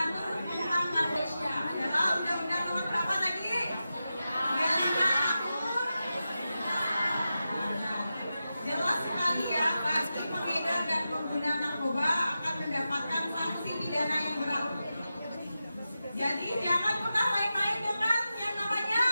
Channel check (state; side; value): inverted; both; correlation -0.91